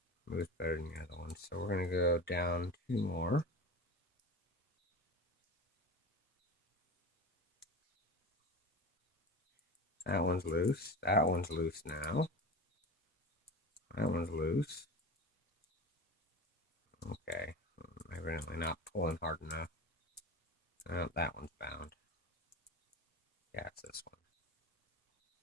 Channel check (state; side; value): normal; both; correlation 0.30